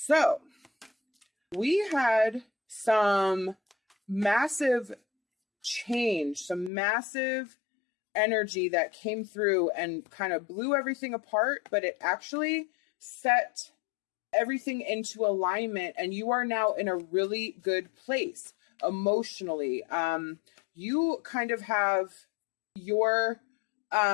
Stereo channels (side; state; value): right; drops out; at 6.7 s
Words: we had some massive change, some massive energy that came through and kind of blew everything apart, but it actually set everything into alignment, and you are now in a really good place emotionally. You kind of have your